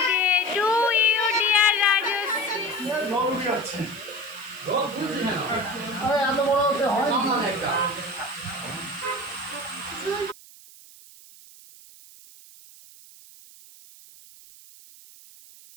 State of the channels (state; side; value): noise; right; hiss, 21 dB below the sound